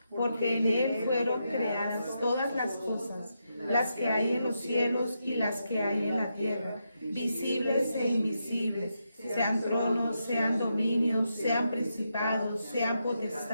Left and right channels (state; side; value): inverted; both; correlation -0.84